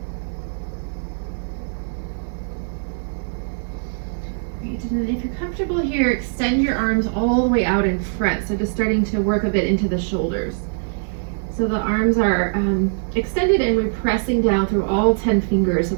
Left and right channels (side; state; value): left; silent; digital silence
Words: Great. And then if you're comfortable here, extend your arms all the way out in front. So just starting to work a bit into the shoulders. So the arms are extended and we're pressing down through all 10 fingers. So